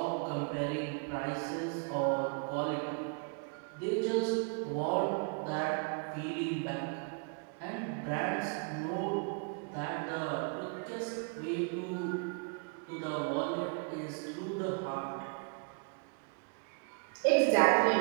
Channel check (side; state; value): left; quieter; 37.2 dB